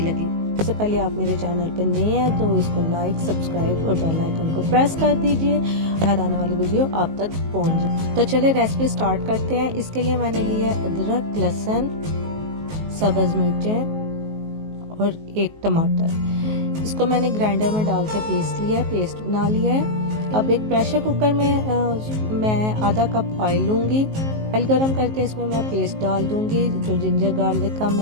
लगी। सबसे पहले आप मेरे चैनल पर नए हैं तो इसको लाइक, सब्सक्राइब और बेल आइकन को प्रेस कर दीजिए, हर आने वाली वीडियो आप तक पहुंच जाए। तो चलिए रेसिपी स्टार्ट करते हैं। इसके लिए मैंने लिया है अदरक, लहसुन, सब्ज मिर्चें और एक टमाटर। इसको मैंने ग्राइंडर में डाल के पीस लिया है, पेस्ट बना लिया है। अब एक प्रेशर कुकर में मैं आधा कप ऑयल लूंगी। ऑयल गर्म करके इसमें मैं पेस्ट डाल दूंगी, जो जिंजर गार्लिक का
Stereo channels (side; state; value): left; late; 19 ms